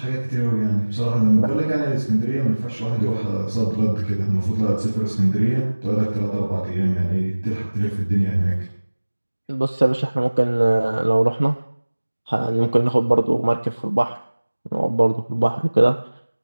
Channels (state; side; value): inverted; both; correlation -1.00